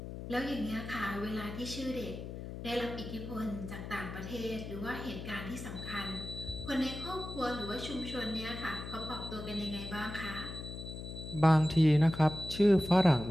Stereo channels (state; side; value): noise; left; hum, 9 dB below the sound